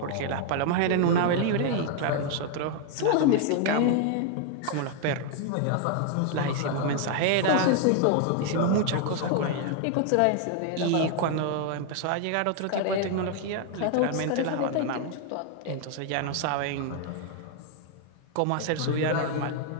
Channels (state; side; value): different; both; correlation 0.00